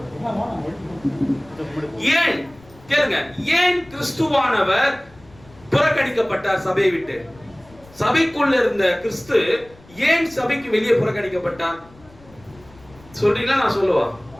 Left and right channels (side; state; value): left; noise; rumble, 25 dB below the sound